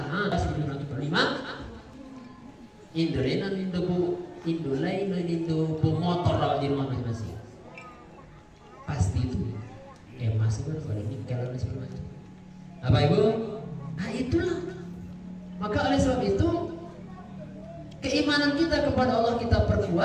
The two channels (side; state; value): both; identical; correlation 1.00